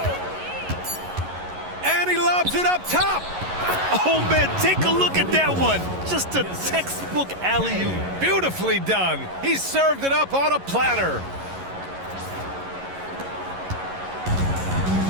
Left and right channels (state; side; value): late; left; 11 ms